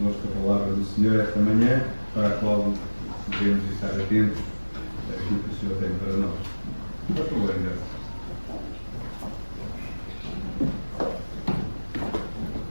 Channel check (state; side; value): inverted; both; correlation -1.00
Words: a palavra do Senhor esta manhã, para a qual devemos estar atentos àquilo que o Senhor tem para nós. Por favor, Anderson.